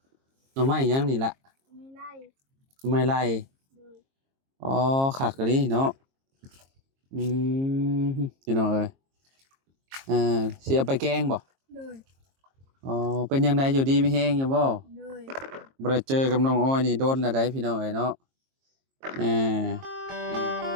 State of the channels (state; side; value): late; left; 22 ms